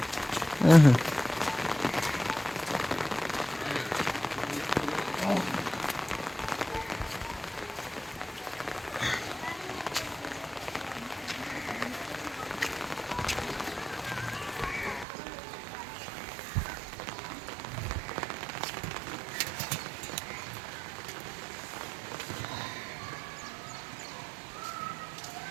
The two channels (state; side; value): drops out; left; at 15.1 s